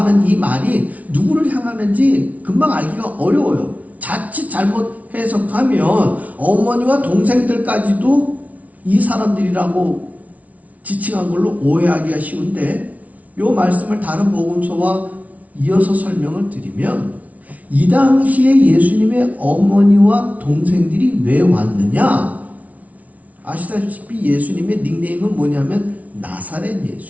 이 말이 누구를 향하는지 금방 알기가 어려워요. 자칫 잘못 해석하면 어머니와 동생들까지도 이 사람들이라고 지칭한 걸로 오해하기가 쉬운데, 이 말씀을 다른 복음서와 이어서 설명을 드리면 이 당시에 예수님의 어머니와 동생들이 왜 왔느냐? 아시다시피 예수님의 닉네임은 뭐냐면 나사렛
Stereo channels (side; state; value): left; late; 0.070 ms